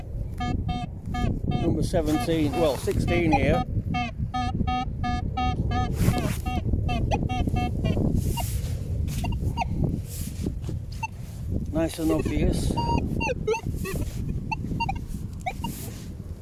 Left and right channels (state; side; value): identical; both; correlation 1.00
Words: number 17, well 16 here. Nice and obvious.